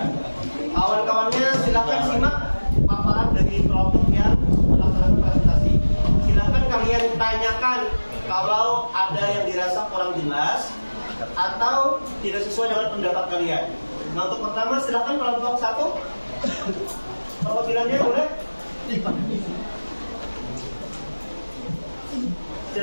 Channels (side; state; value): both; inverted; correlation -1.00